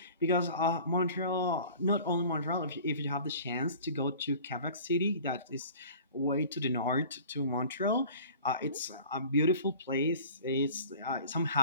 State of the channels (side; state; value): both; inverted; correlation -0.44